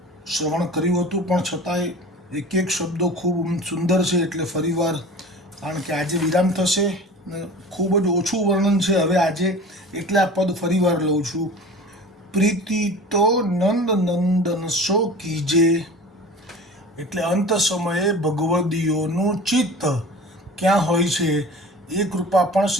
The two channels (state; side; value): normal; both; correlation 0.39